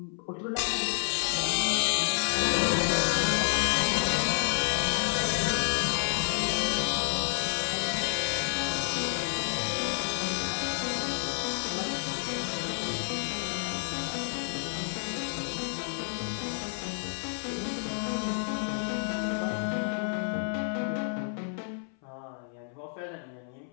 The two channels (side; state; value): right; silent; 58 dB below the other